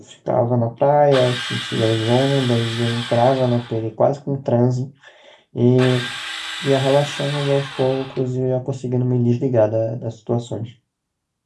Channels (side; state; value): both; identical; correlation 1.00